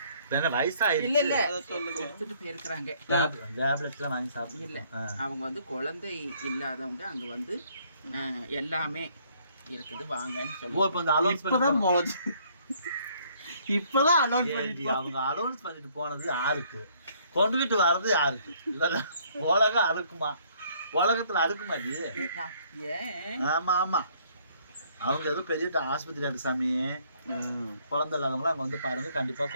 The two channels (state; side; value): inverted; both; correlation -0.63